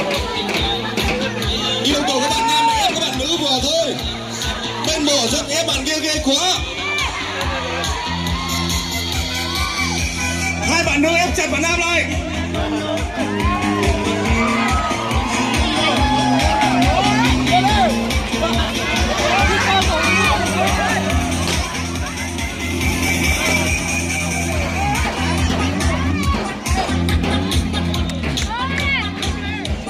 Yêu cầu các bạn nam là ép các bạn nữ vừa thôi. Bên bờ rất ép bạn kia ghê quá. Hai bạn nữ ép chặt bạn nam lại.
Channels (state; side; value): identical; both; correlation 1.00